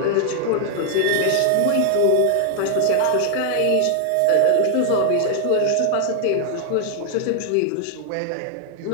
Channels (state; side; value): different; both; correlation 0.00